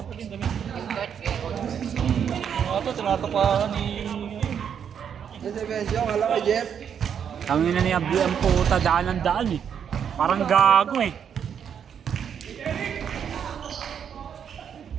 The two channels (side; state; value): left; quieter; 8.0 dB